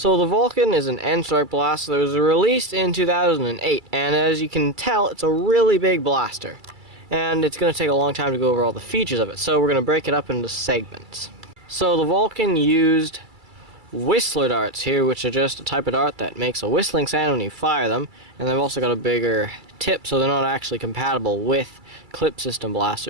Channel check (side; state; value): left; late; 2.3 ms